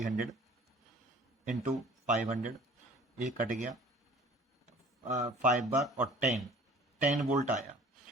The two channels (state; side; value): normal; both; correlation 0.48